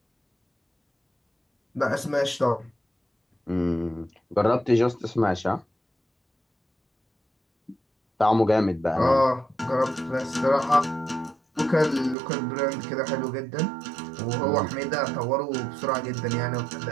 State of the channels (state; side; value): drops out; left; at 12.2 s